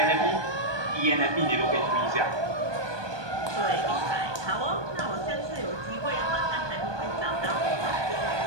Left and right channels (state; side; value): late; left; 1.2 ms